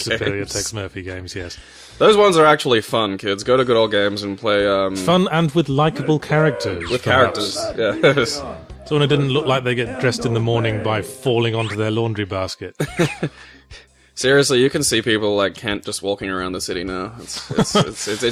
Tex Murphy games, yes. Those ones are actually fun, kids. Go to Good Old Games and play... Fun and with likable characters. With characters, yeah. Someone who didn't look like they get dressed in the morning by falling onto their laundry basket. Seriously, you can see people like Kent just walking around the city now.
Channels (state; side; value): identical; both; correlation 1.00